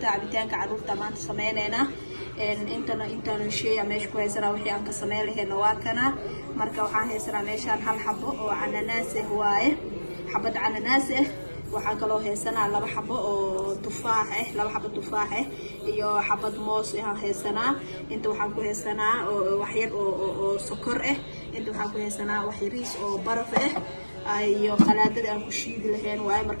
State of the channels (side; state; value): both; inverted; correlation -1.00